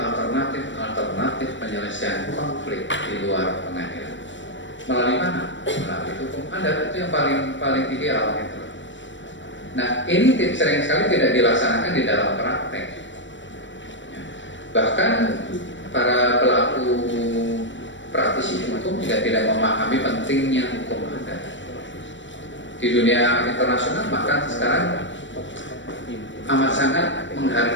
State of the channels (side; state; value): right; late; 0.54 ms